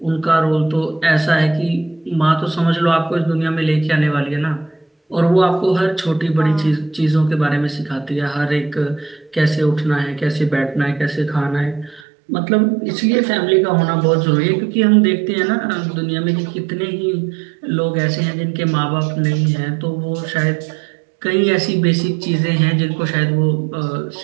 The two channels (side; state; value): left; drops out; at 12.0 s